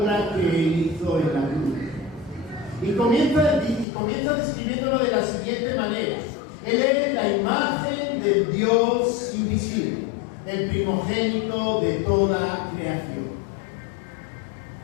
que Él hizo en la cruz. Y comienza describiéndolo de la siguiente manera. Él es la imagen del Dios invisible, el primogénito de toda creación.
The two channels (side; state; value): right; drops out; at 3.9 s